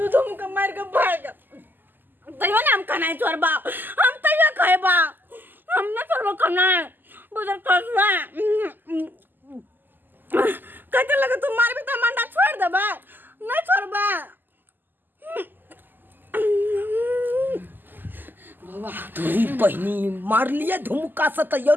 दूधम का मार के भाग तैयो ना हम खाना छोड़ बा हम तैयो खाए बा हम ना छोड़ खाना बुझर कसवा कहते लगे तू मार भी तो मंडा छोड़ दे बा नहीं छोड़ बा बाबा तोरी बहनी मार लिए धुमका से तैयो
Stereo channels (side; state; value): left; late; 0.090 ms